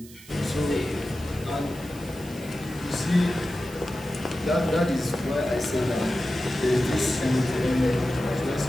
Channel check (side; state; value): right; noise; hiss, 20 dB below the sound